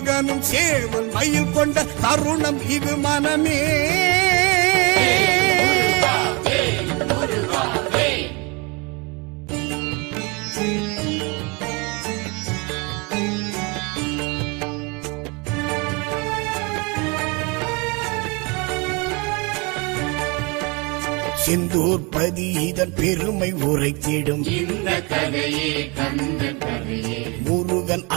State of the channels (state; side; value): quieter; left; 29.0 dB